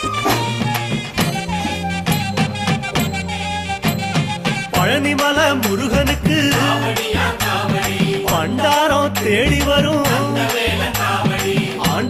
பழனிமல முருகனுக்கு பண்டாரம் தேடி வரும்,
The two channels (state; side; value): identical; both; correlation 1.00